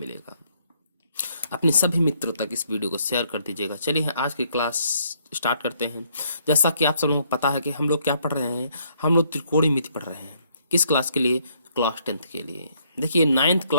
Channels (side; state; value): both; inverted; correlation -0.69